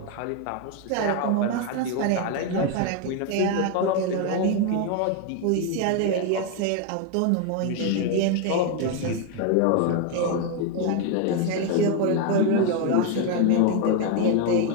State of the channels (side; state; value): both; different; correlation 0.01